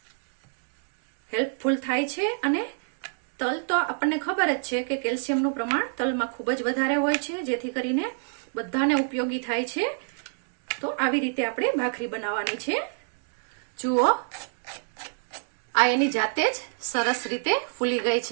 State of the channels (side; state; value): left; silent; digital silence